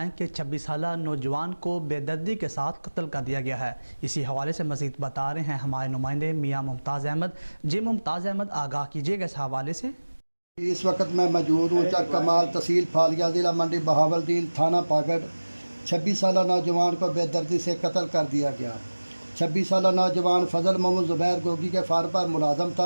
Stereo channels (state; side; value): inverted; both; correlation -1.00